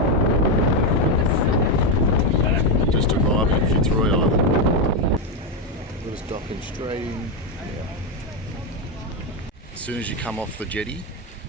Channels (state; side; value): normal; both; correlation 0.07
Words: Just arrived at Fitzroy Island. We're just docking straight in. Yeah. As soon as you come off the jetty,